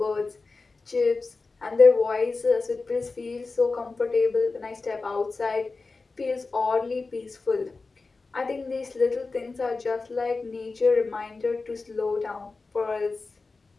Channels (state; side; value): quieter; right; 3.9 dB